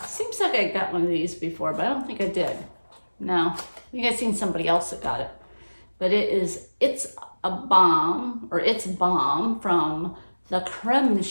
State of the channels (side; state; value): both; inverted; correlation -1.00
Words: Seems like I got one of these before, but I don't think I did. No, I think I've seen somebody else that got it. But It's a Bomb, or It's Bomb from the Creme